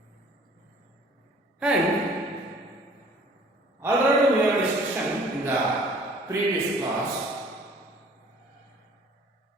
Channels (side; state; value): both; normal; correlation 0.53